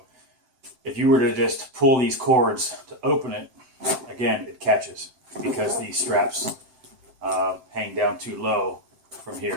if you were to just pull these cords to open it, again, it catches because these straps hang down too low from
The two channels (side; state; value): left; late; 7.6 ms